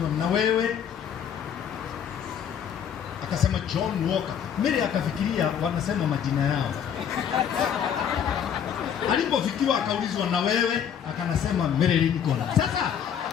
"Na wewe?" Akasema John Walker. Mimi akafikiria wanasema majina yao. Alipofikiwa akaulizwa, "Na wewe?" Akanasema Mary Lincoln. Sasa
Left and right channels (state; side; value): quieter; right; 8.4 dB